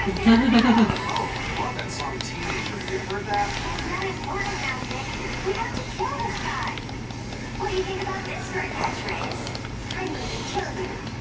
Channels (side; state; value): both; identical; correlation 1.00